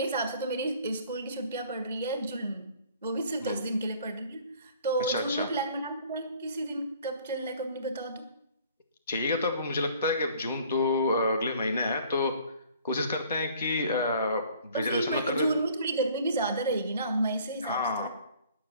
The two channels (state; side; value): inverted; both; correlation -0.54